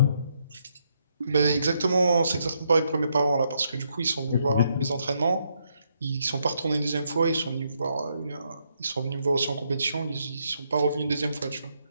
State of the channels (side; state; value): both; inverted; correlation -0.76